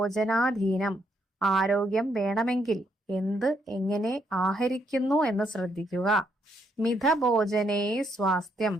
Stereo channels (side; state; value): both; normal; correlation 0.74